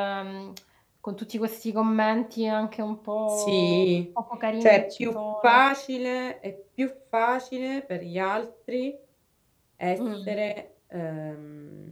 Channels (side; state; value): both; identical; correlation 1.00